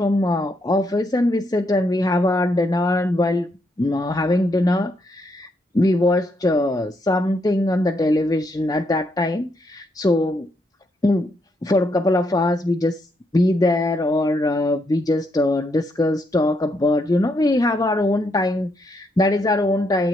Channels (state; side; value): normal; both; correlation 0.77